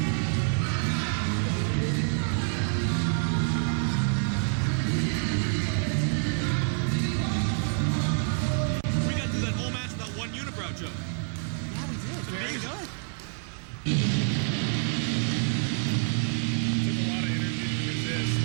We got through that whole match without one unibrow joke. Yeah, we did. Very good. Took a lot of energy to resist.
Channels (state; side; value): silent; left; 58 dB below the other